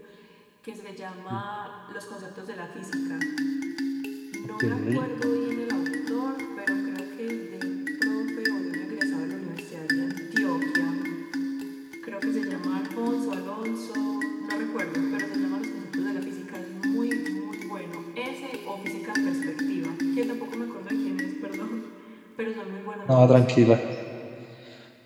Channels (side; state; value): both; identical; correlation 1.00